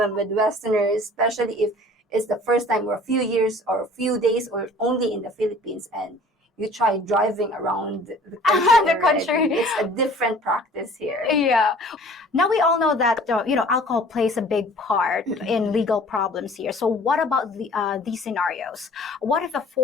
with Westerners, especially if it's the first time or a few years or a few days or only in the Philippines, and you try driving around the country. It's a different practice here. Yeah. Now we all know that, alcohol plays a big part in legal problems here. So what about these scenarios? What if a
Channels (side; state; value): both; normal; correlation 0.49